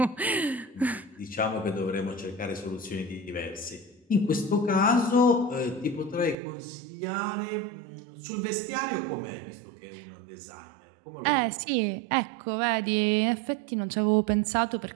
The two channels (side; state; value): left; drops out; at 6.4 s